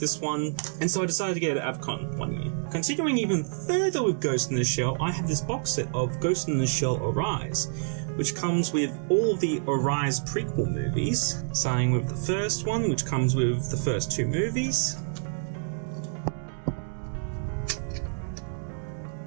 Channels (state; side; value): silent; left; digital silence